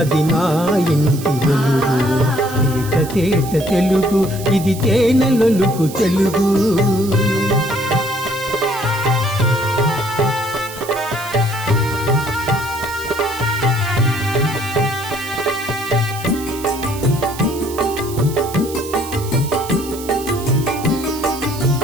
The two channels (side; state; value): right; noise; hiss, 14 dB below the sound